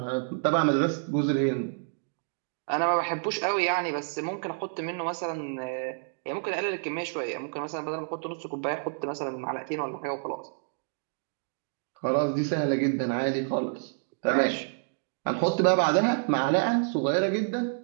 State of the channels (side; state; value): left; silent; digital silence